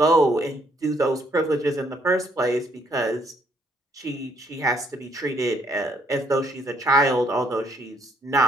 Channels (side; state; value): both; normal; correlation 0.68